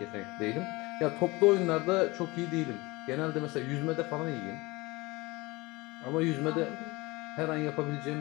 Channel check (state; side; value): quieter; right; 22.9 dB